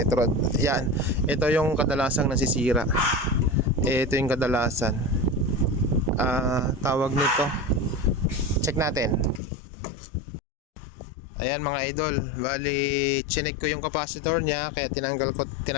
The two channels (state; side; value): drops out; right; at 9.4 s